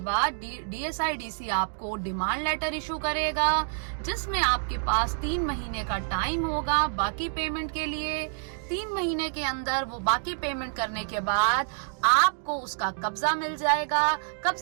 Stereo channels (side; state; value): left; silent; digital silence